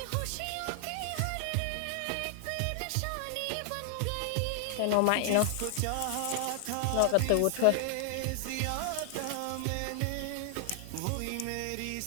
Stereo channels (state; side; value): different; both; correlation 0.00